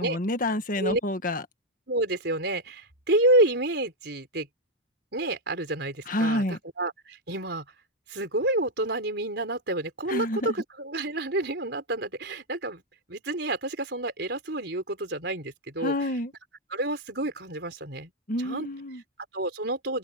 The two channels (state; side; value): normal; both; correlation 0.00